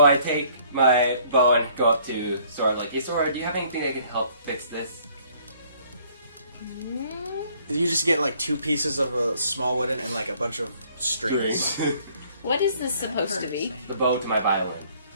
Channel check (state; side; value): inverted; both; correlation -0.60